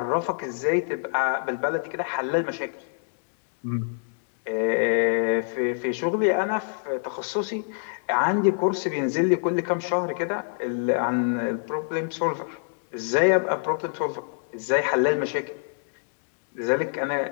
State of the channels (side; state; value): right; silent; digital silence